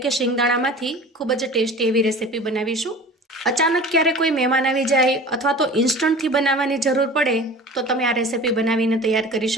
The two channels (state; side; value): normal; both; correlation 0.40